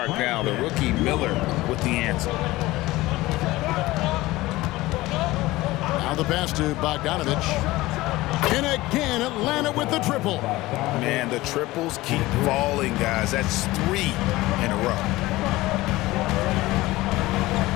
now. The rookie Miller with the answer. Now the pass to Bogdanovich. And again, Atlanta with the triple. Man, the triples keep falling, guys. That's 3 in a row.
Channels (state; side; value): quieter; right; 18.7 dB